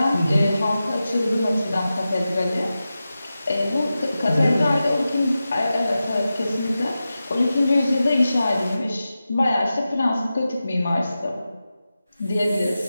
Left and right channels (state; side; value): inverted; both; correlation -0.93